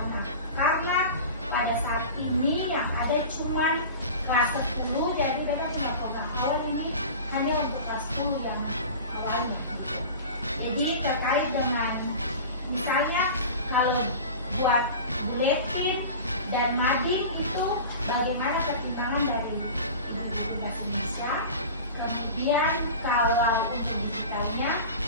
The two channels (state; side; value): inverted; both; correlation -0.34